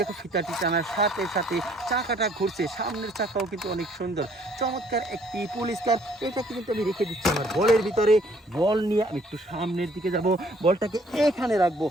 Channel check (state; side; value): normal; both; correlation 0.62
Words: ফিতাটি টানার সাথে সাথে চাকাটা ঘুরছে। সামনের চাকাও কিন্তু অনেক সুন্দর। চমৎকার একটি পুলিশ কার। এটাকে কিন্তু আমি রেখে দিচ্ছি আমার বলের ভিতরে। বল নিয়ে আমি একটু সামনের দিকে যাব। বলটাকে এখানে রাখবো।